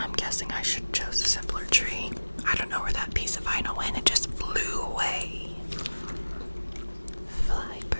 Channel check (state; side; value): inverted; both; correlation -1.00